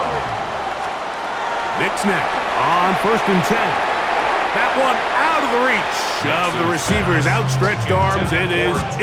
Nix now on 1st and 10. That one out of the reach of the receiver's outstretched arms. It is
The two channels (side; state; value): both; identical; correlation 1.00